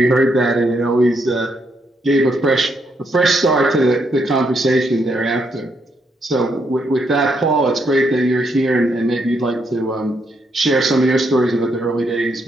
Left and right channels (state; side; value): normal; both; correlation 0.77